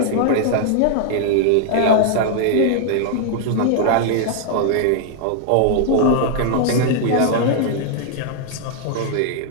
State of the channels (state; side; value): different; both; correlation 0.00